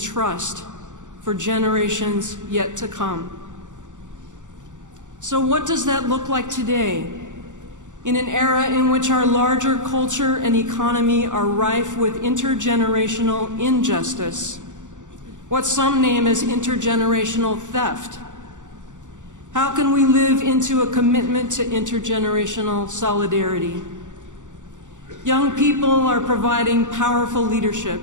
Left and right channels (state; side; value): late; left; 0.86 ms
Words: for generations yet to come. So what does that look like today? In an era in which our larger culture and economy are rife with intergenerational injustice, what some name as intergenerational theft. How can we live into a commitment to intergenerational solidarity? Young people are providing powerful leadership,